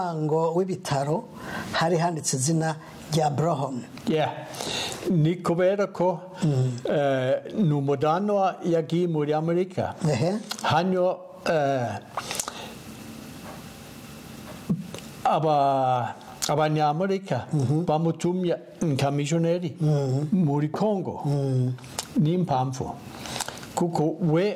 w'ibitaro hari handitse izina rya Broham ni kubera ko ni umudanwa yagiye muri Amerika hano abanyamerika bamutumye nk'amishoneri muri Kongo n'impamvu kuko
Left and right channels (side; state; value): both; identical; correlation 1.00